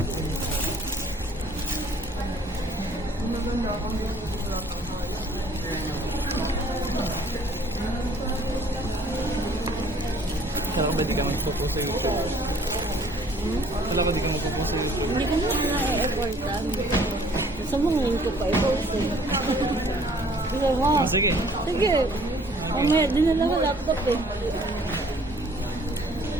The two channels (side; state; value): both; normal; correlation 0.57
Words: Kala ko ba di ka magpo-post sa YouTube? Kala ko di ka magpo-post sa YouTube. Hindi ko na na-e-effortan. Gusto mo ngayon ko pa i-post eh. Sige mo. Oh, sige. Sige. Mamaya, dinala ko laptop eh.